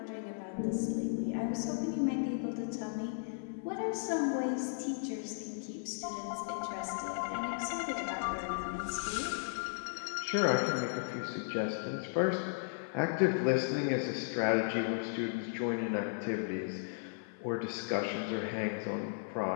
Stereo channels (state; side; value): silent; right; 54 dB below the other